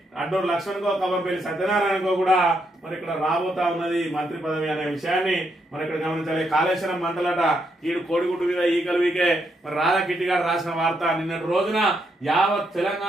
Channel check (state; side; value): normal; both; correlation 0.78